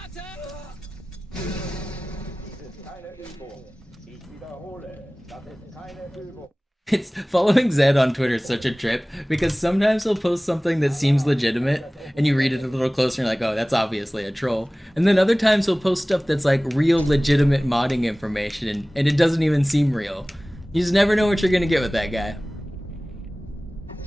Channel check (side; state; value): both; normal; correlation 0.98